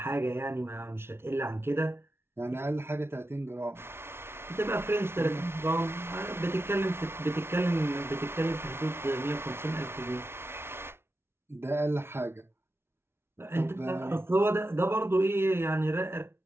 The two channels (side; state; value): left; late; 0.12 ms